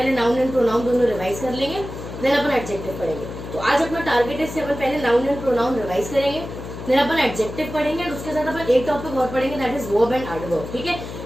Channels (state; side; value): noise; left; hum, 10 dB below the sound